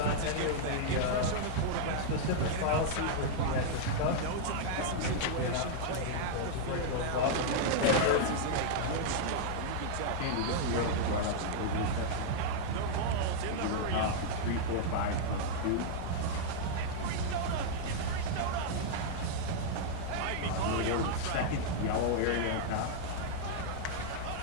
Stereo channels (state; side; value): different; both; correlation -0.01